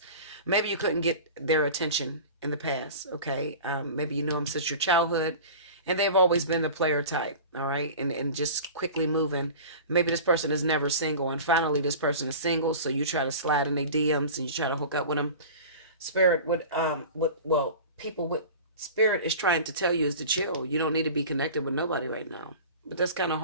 Maybe you couldn't get their attention in the past. Okay? Maybe you know them since your childhood. And they've always been the player type, all right? And just quickly moving. Maybe this person is never single, and finally this person is single, so you try to slide in their DMs and you try to hook up with them. Spirit would, people with spirit is trying to tell you is to chill. You don't need to be connected with nobody right now. But that's kind of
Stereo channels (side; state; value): both; inverted; correlation -0.36